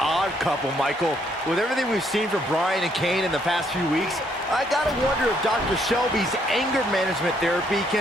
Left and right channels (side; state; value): both; normal; correlation 0.70